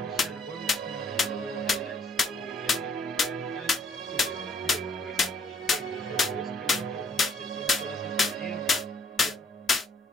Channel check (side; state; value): both; normal; correlation 0.65